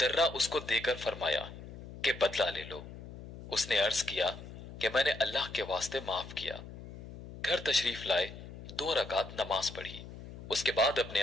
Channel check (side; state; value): left; noise; hum, 13 dB below the sound